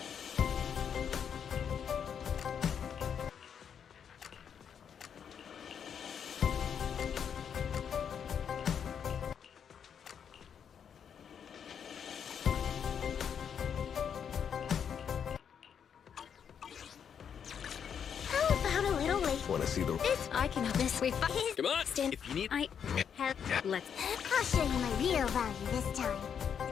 A little late. Want to see the... This I can help this. We Come on! stand. If you need... I have. Let's. I'll show you my real value this time.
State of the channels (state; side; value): quieter; right; 7.7 dB